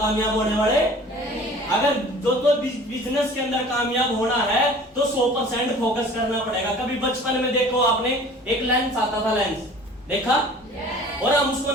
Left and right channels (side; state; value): both; normal; correlation 0.46